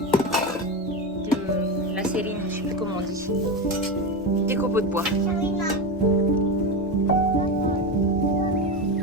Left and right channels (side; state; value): both; normal; correlation 0.17